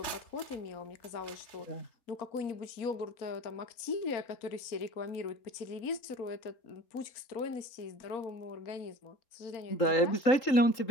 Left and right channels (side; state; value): right; late; 4.3 ms